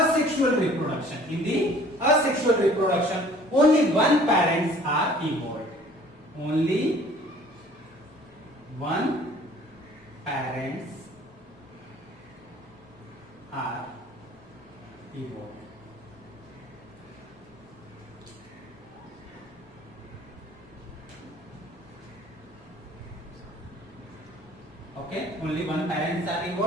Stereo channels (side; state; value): both; normal; correlation 0.52